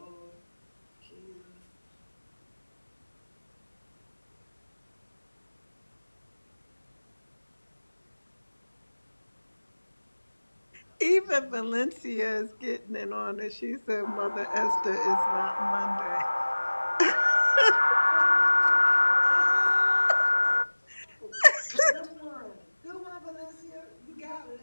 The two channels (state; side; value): inverted; both; correlation -1.00